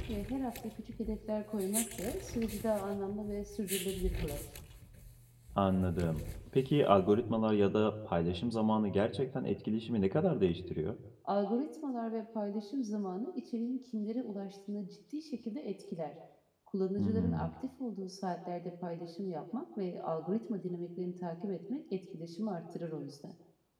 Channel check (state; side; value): identical; both; correlation 1.00